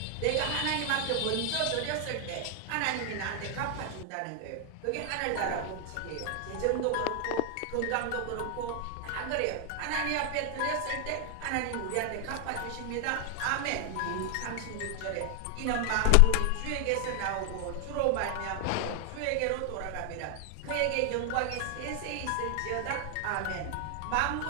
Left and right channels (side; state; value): both; different; correlation 0.00